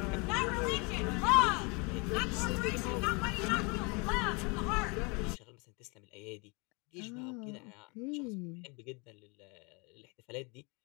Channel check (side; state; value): right; quieter; 29.7 dB